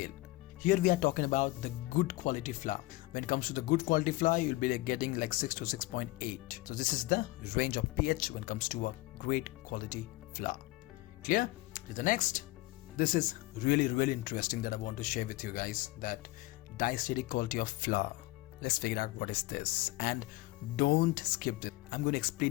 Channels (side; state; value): right; quieter; 19.7 dB